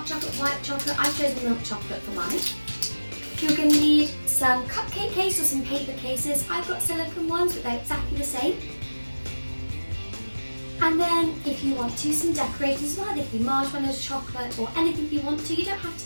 chocolate, white chocolate. I've chosen milk chocolate for mine. You're going to need some cupcake case or some paper cases. I've got silicone ones, but they're exactly the same. And then if you want to, some decorators as well. They can be marshmallows, chocolate, or anything you want to. You don't have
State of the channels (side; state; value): both; inverted; correlation -1.00